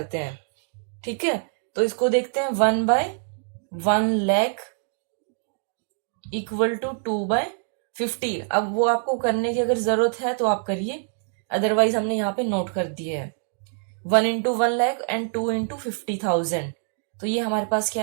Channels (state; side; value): silent; left; 62 dB below the other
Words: हैं। ठीक है, तो इसको देखते हैं, 1 बाय 1,00,000 इक्वल टू 2 बाय 50। अब वो आपको करने की अगर जरूरत है तो आप करिए, अदरवाइज हमने यहाँ पे नोट कर दिया है 1 इंटू 1,00,000 एंड 2 इंटू 50,000। तो ये हमारे पास क्या